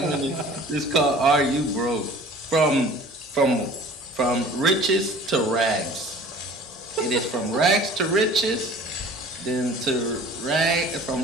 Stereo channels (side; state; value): both; normal; correlation 0.46